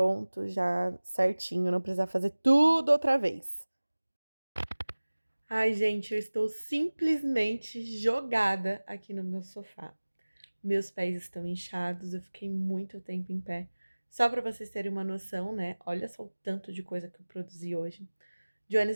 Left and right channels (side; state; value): both; inverted; correlation -1.00